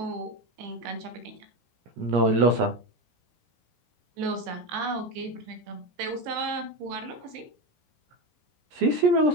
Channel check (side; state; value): left; late; 17 ms